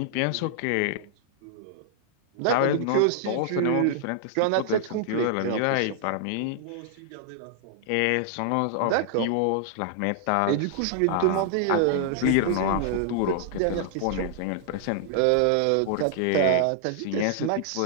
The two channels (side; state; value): both; different; correlation -0.01